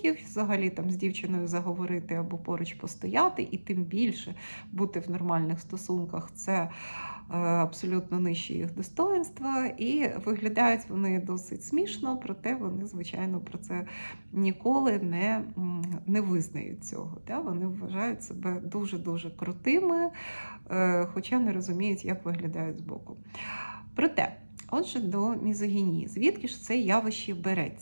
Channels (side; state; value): both; inverted; correlation -1.00